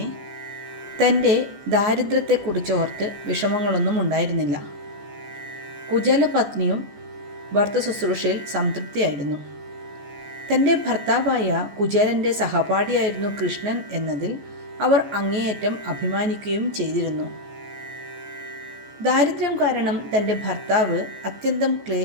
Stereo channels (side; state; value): left; late; 14 ms